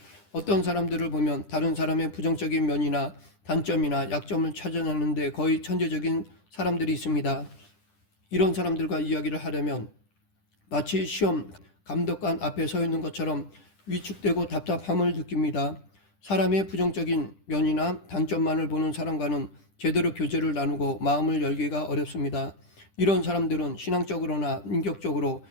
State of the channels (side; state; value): right; late; 10 ms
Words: 어떤 사람들을 보면 다른 사람의 부정적인 면이나 단점이나 약점을 찾아내는데 거의 천재적인 사람들이 있습니다. 이런 사람들과 이야기를 하려면 마치 시험 감독관 앞에 서 있는 것처럼 위축되고 답답함을 느낍니다. 사람의 부정적인 면이나 단점만을 보는 사람과는 제대로 교제를 나누고 마음을 열기가 어렵습니다. 이런 사람들은 신앙적으로나 인격적으로